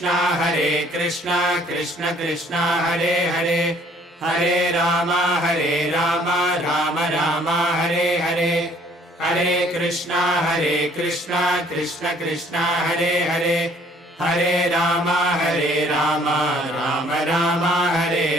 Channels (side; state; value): both; normal; correlation 0.59